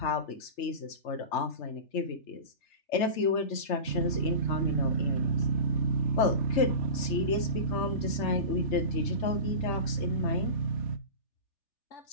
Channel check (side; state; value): right; late; 3.3 ms